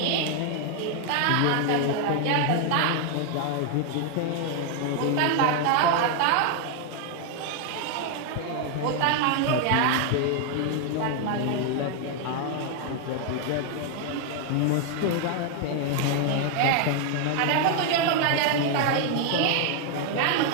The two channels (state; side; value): different; both; correlation 0.00